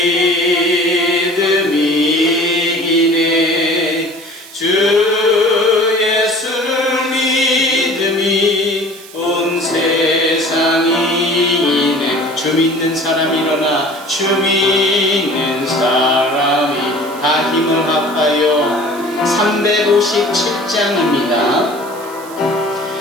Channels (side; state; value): right; noise; hiss, 19 dB below the sound